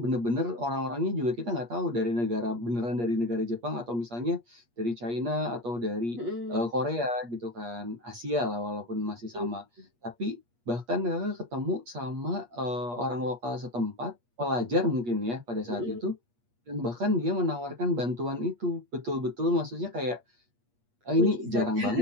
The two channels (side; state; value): left; late; 8.4 ms